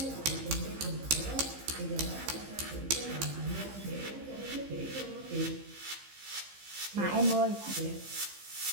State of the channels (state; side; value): late; left; 15 ms